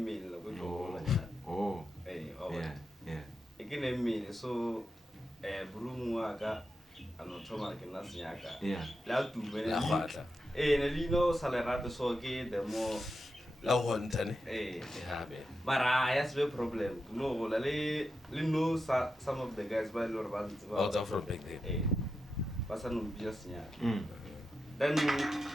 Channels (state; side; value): normal; both; correlation 0.88